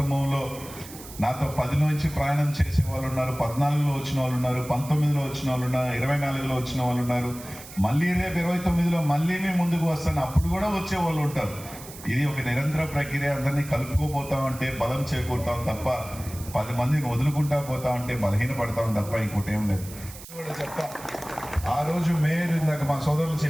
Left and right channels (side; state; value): right; noise; hiss, 16 dB below the sound